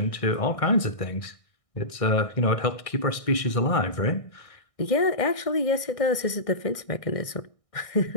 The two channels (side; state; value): right; late; 1.6 ms